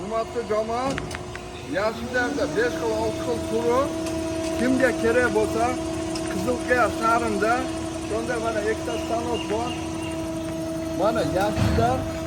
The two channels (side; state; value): both; identical; correlation 1.00